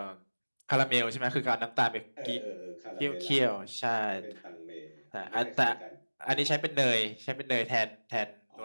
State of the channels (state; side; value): inverted; both; correlation -1.00